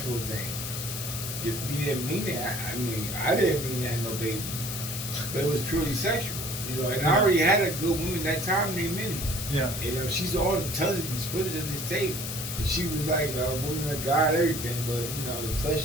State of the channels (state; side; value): noise; left; hiss, 5 dB below the sound